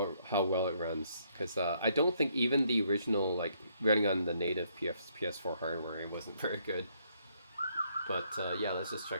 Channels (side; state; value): both; inverted; correlation -0.70